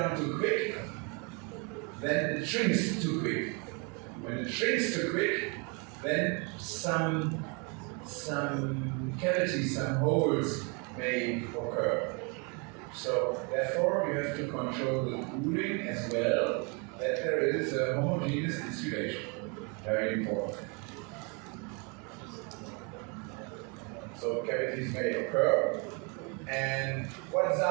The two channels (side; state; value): left; quieter; 33.1 dB